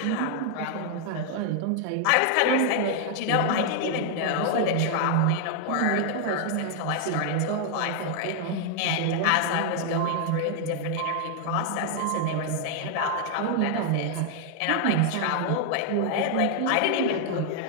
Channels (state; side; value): different; both; correlation 0.00